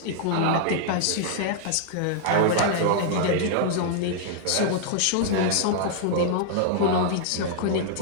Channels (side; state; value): both; different; correlation -0.01